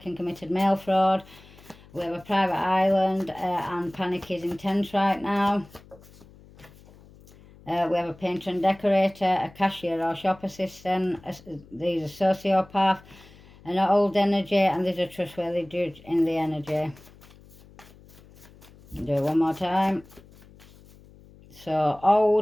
and committed mail fraud. We have a private island, and panic is intense right now. We have a painter and decorator, a cashier or shop assistant. There's a sociopath, an old energy, and there's a trustworthy judge in the energy. Do it one more time. So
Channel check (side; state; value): left; noise; hum, 24 dB below the sound